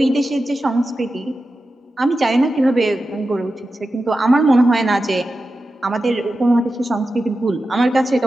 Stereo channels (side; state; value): both; normal; correlation 0.92